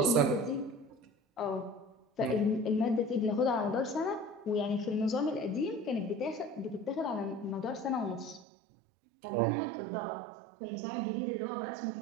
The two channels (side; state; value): left; drops out; at 8.5 s